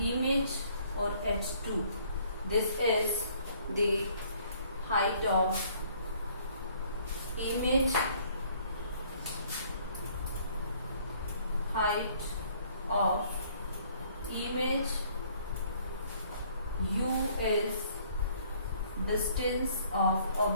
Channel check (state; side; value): inverted; both; correlation -0.60